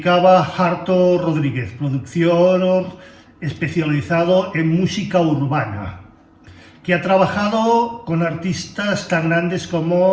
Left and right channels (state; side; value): identical; both; correlation 1.00